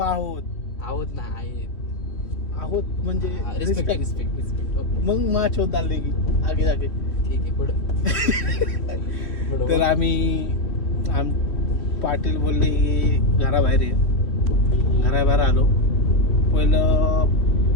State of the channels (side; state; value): right; late; 3.2 ms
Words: आहोत म्हणजे रिस्पेक्ट मग माच होत आले की आगे जागे ठीक आहे पुढं तर आम्ही पाटील बोलले की घराबाहेर ये. घराबाहेर आलो. पहिलं